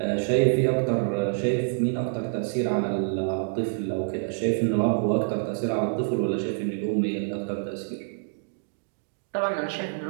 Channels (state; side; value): silent; left; 60 dB below the other